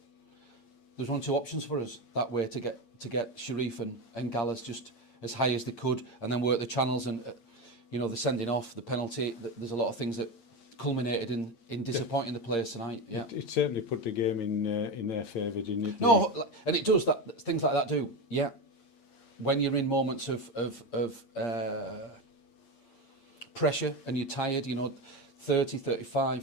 there was only two options for us that way to get Sharif and Gallas just as high as they could, and then work the channels and the sending off, the penalty. There's a lot of things that culminated in disappointing the players tonight. Yeah, it certainly put the game in their favour, didn't it? No, and it does that. Things like that do. Yeah, when you're in moments of pressure and you're tired, 30, 35,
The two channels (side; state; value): right; late; 8.7 ms